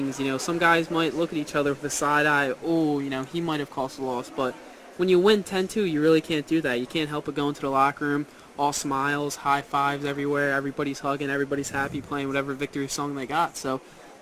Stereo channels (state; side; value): identical; both; correlation 1.00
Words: You know, some guys might look at each other with a side eye. Oh, you know, he might have caused a loss. But when you win 10-2, you really can't do that. You can't help but go into the locker room, all smiles, high fives everywhere. Everybody's hugging. Everybody's happy, playing whatever victory song they got. So